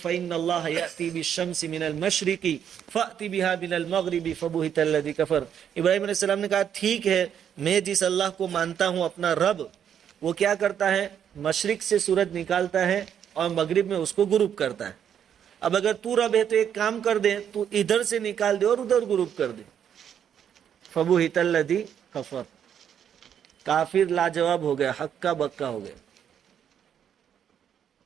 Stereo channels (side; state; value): left; quieter; 8.8 dB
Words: اللہ یأتی بالشمس من المشرق فأتی بها من المغرب فبہت الذی کفر. ابراہیم علیہ السلام نے کہا ٹھیک ہے، میں جس اللہ کو مانتا ہوں اپنا رب، وہ کیا کرتا ہے؟ مشرق سے سورج نکالتا ہے اور مغرب میں اس کو غروب کرتا ہے. اب اگر تو رب ہے تو ایک کام کر دے، تو ادھر سے نکال دے اور ادھر غروب کر دے. فبہت الذی کفر، کافر لاجواب ہو گیا، ہکا بکا ہو گیا.